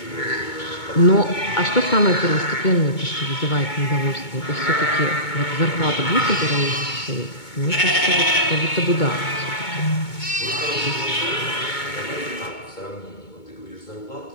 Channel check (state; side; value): late; right; 2.2 ms